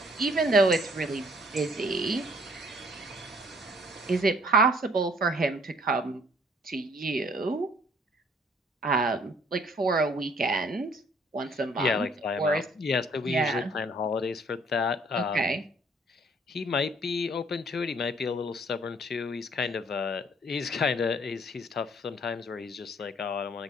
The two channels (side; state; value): both; normal; correlation 0.60